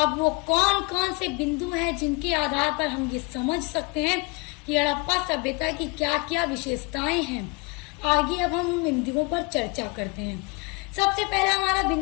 वो कौन कौन से बिंदु हैं जिनके आधार पर हम ये समझ सकते हैं कि हड़प्पा सभ्यता की क्या क्या विशेषताएं हैं, आगे अब हम उन बिंदुओं पर चर्चा करते हैं। सबसे पहला हमारा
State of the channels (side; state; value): right; quieter; 28.6 dB